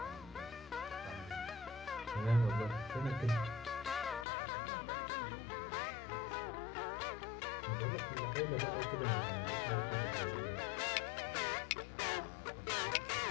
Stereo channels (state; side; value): drops out; right; at 4.2 s